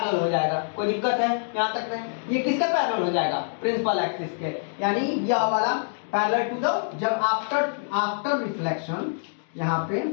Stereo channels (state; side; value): silent; right; digital silence